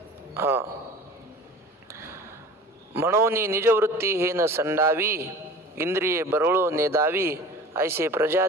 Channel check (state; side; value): normal; both; correlation 0.41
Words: हा, म्हणून निजवृत्ती हे न संडावी, इंद्रिये बरळो नेदावी, ऐसे